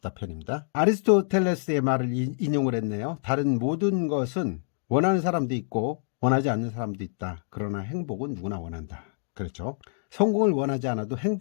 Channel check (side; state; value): right; silent; digital silence